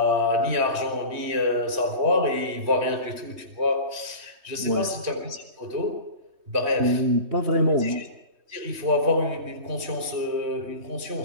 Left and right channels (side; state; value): left; late; 3.1 ms